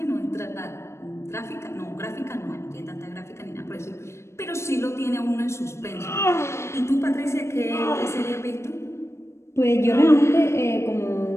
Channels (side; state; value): right; late; 0.13 ms